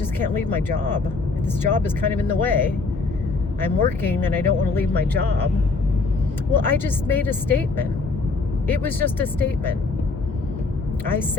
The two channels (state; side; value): quieter; right; 3.9 dB